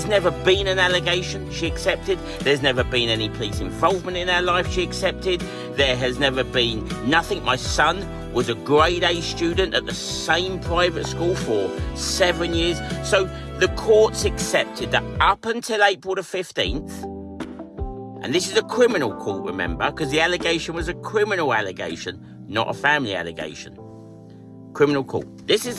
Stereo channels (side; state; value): both; identical; correlation 1.00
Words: never been an allegation, she accepted. There's never been any police involvement in our life, she accepted. There has never been nothing. My son was a grade A student at the same private school for 7 years. So the courts accepted that up until April the 15th, and this is a criminal court, remember, because the allegation was a criminal allegation, not a family allegation. Criminal court. This is